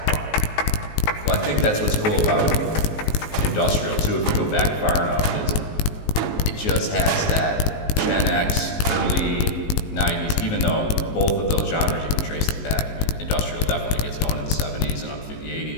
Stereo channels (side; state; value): right; late; 19 ms